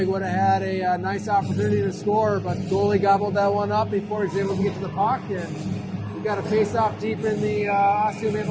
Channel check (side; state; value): both; identical; correlation 1.00